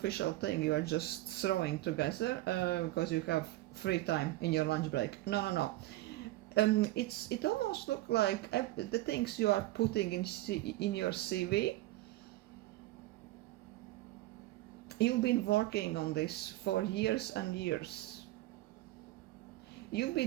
thing you are just throwing together because you have free time in your lunch break. No. It almost looks like the things you are putting in your CV. You've been working on this for years and years. You've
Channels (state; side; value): quieter; left; 17.3 dB